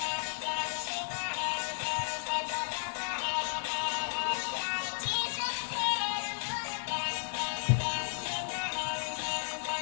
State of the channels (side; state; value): right; silent; digital silence